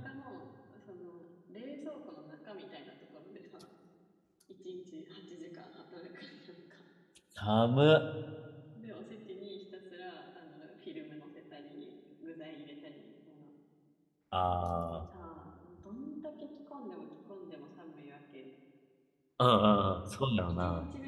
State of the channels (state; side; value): identical; both; correlation 1.00